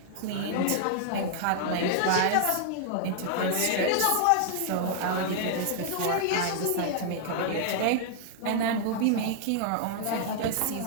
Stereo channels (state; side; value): different; both; correlation -0.01